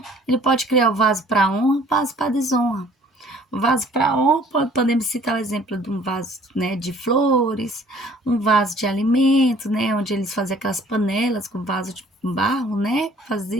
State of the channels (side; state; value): both; normal; correlation 0.55